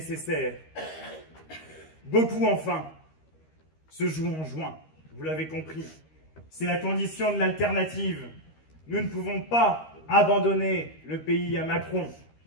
Beaucoup, enfin, se jouent en juin. Vous l'avez compris. C'est la condition de l'alternative. Nous ne pouvons pas abandonner le pays à Macron,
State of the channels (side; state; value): right; late; 13 ms